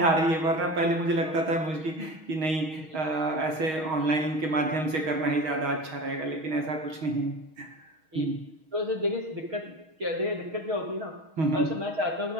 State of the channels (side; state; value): left; late; 6.3 ms